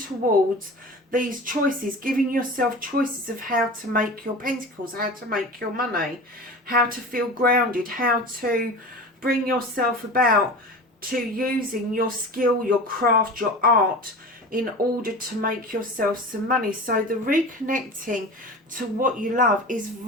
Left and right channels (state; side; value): normal; both; correlation 0.34